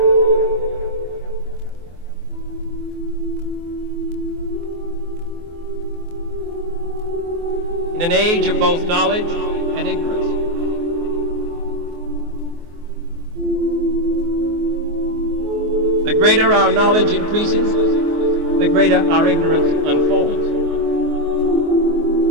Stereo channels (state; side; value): late; left; 24 ms